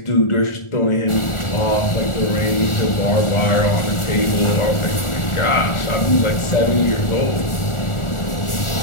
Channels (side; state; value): right; late; 1.4 ms